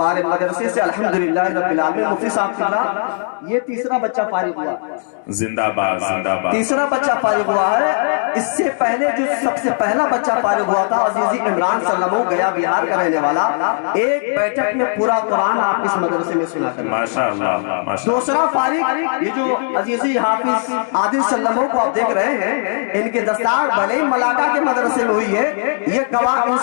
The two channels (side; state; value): right; silent; 68 dB below the other